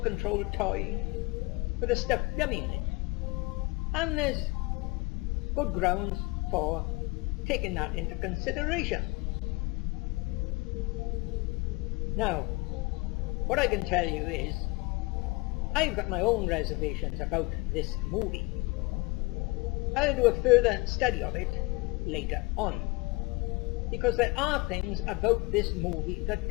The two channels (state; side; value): quieter; right; 24.6 dB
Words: controlled toy with a stuffed dummy in it. And there's good grounds for taking that into consideration. Now, what I can tell you is, I've got my own reservations about this movie. I'll do a further study of it later on, because there are things about this movie that